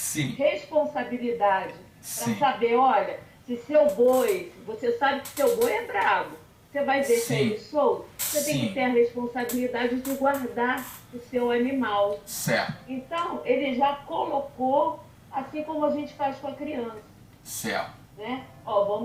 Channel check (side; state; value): both; identical; correlation 1.00